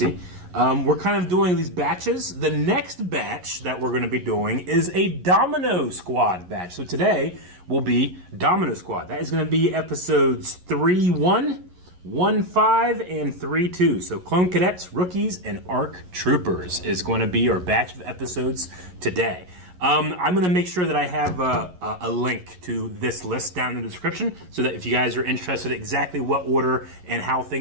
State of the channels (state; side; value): late; left; 11 ms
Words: We're kind of doing these batches. The next batch that we're going to be doing is a Domino Squad batch. So today will be Domino Squad. That is going to be episodes 3-1, 1-5, and 3-2. So Clone Cadets, Rookies, and ARC Troopers is going to be our batch of episodes today. I'm going to make sure that I have a link to this list down in the description so that if you guys are interested in exactly what order and how